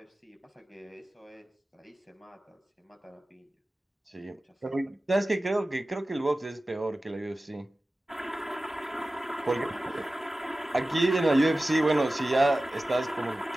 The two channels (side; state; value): both; normal; correlation 0.96